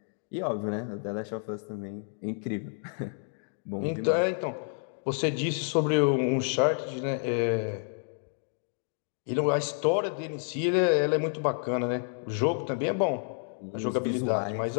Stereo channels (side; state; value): right; silent; 56 dB below the other